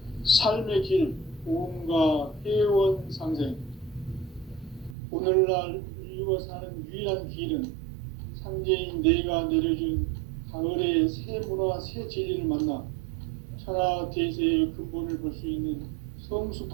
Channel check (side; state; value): left; drops out; at 5.0 s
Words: 삶의 길, 보험과 회원 상생. 오늘날 인류가 사는 유일한 길은 상제인 내가 내려준 가을의 새 문화, 새 진리를 만나 천하 대세의 근본을 볼 수 있는